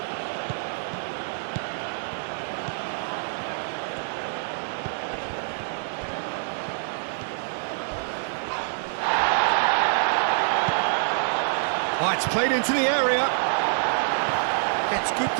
Oh, it's played into the area. Gets good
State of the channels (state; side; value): silent; left; digital silence